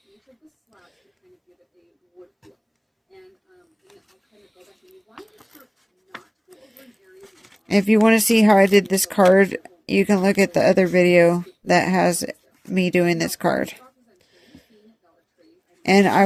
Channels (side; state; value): both; identical; correlation 1.00